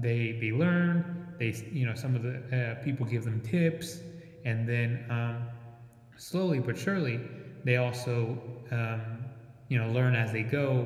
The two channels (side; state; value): both; identical; correlation 1.00